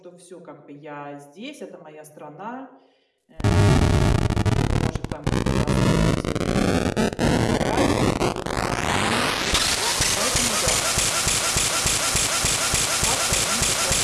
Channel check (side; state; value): both; identical; correlation 1.00